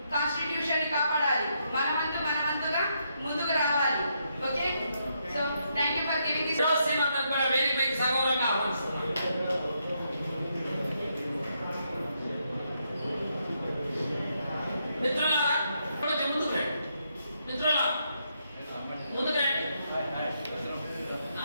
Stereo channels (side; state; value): both; inverted; correlation -0.78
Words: Constitution ని కాపాడాలి, మనవంతుగా ముందుకు రావాలి. Okay, so thank you for giving this. కూడా వేదికపైకి సగౌరవంగా ఆహ్వానిస్తున్నాను. మిత్రులారా కొంచెం ముందుకు రండి. మిత్రులారా ముందుకు రండి.